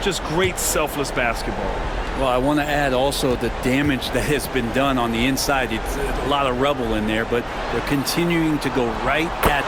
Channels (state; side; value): identical; both; correlation 1.00